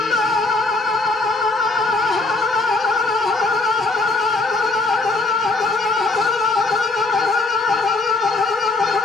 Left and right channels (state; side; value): quieter; right; 3.3 dB